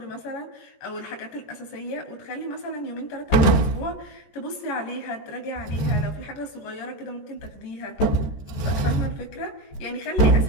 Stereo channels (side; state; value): right; late; 13 ms